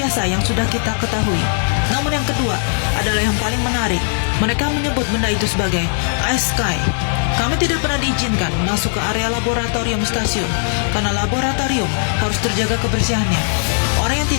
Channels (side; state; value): right; silent; digital silence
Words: yang sudah kita ketahui. Namun yang kedua adalah yang paling menarik. Mereka menyebut benda itu sebagai Ice Sky. Kami tidak pernah diizinkan masuk ke area laboratorium stasiun karena laboratorium harus terjaga kebersihannya. Orang yang